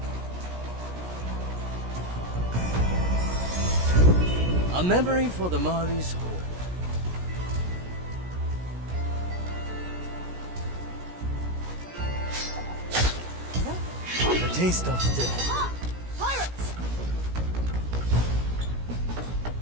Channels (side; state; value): left; late; 17 ms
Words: A memory for the Mari's hold. The taste of death. Pirates!